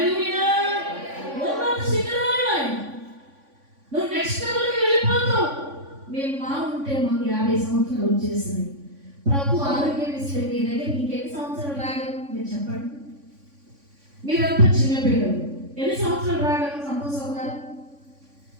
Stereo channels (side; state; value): left; late; 3.5 ms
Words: ఉన్నత శిఖరాలు నువ్వు నెక్స్ట్ లెవెల్కి వెళ్ళిపోతావు. మేము ఉంటే మాకు 50 సంవత్సరాలు వచ్చేసినాయి. ప్రభు ఆరోగ్యం ఇస్తే మీ దగ్గర ఇంకెన్ని సంవత్సరాలు రాగలరు మీరు చెప్పండి. మీరంతా చిన్నపిల్లలు, ఎన్ని సంవత్సరాలు రాగలరు? సంతోషం గారు